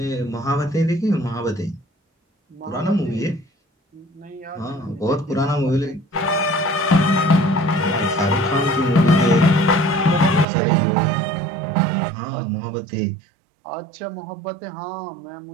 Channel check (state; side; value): drops out; left; at 10.5 s